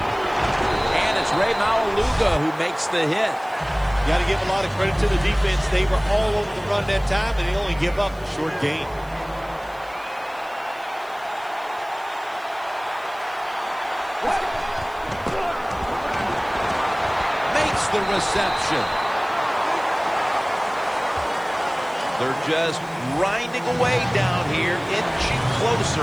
And it's Ray Maualuga who makes the hit. Got to give a lot of credit to the defense. They were all over the run that time, and they only give up a short gain. Makes the reception. They're just grinding away down here, inching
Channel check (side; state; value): right; noise; hiss, 26 dB below the sound